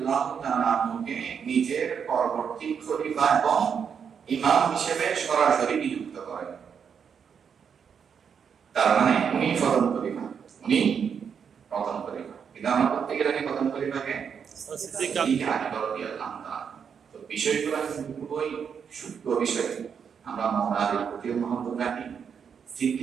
তাআলা আনহুকে নিজের পরবর্তী খলিফা এবং ইমাম হিসেবে সরাসরি নিযুক্ত করেন। তার মানে উনি প্রথম খলিফা। কিন্তু আমরা প্রত্যেকের আগে প্রথম খলিফাকে সিদ্দিক আকবর রাদিয়াল্লাহু তাআলা। তো বিষয়গুলো খুবই সূক্ষ্ম বিষয়। আমরা মাওলার প্রতি মহব্বত রাখি,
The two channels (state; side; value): quieter; left; 7.0 dB